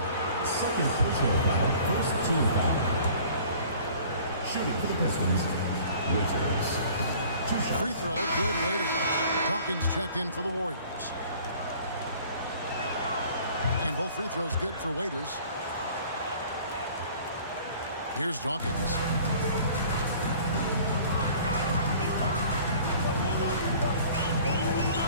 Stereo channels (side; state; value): both; inverted; correlation -0.50